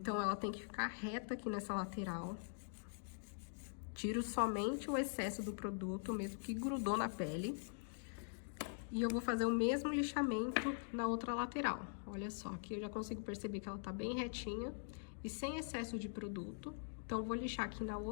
ela tem que ficar reta aqui nessa lateral. Tiro somente o excesso do produto, mesmo que grudou na pele. E eu vou fazer o mesmo lixamento na outra lateral. Olha só, aqui eu já consigo perceber que ela tá bem retinha e sem excesso de produto. Então, eu vou lixar aqui na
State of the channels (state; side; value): silent; right; digital silence